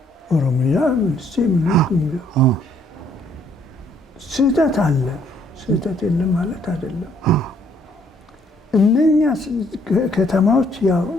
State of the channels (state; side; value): normal; both; correlation 0.66